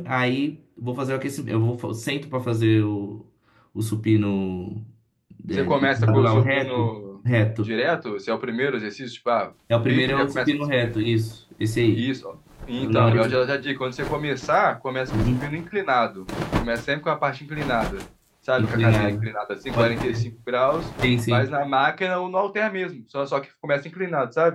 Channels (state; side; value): identical; both; correlation 1.00